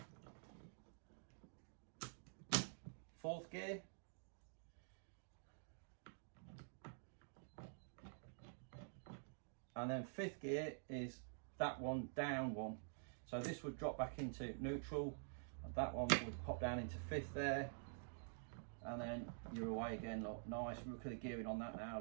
Fourth gear. And then fifth gear is that one down one. So this would drop back into neutral, and that one would pop down into fifth there. And then you're away again, look, nice. Look at the gearing on that now,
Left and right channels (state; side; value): silent; left; digital silence